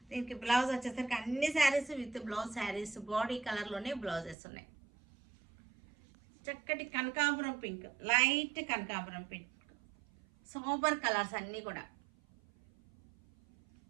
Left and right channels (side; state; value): left; drops out; at 4.4 s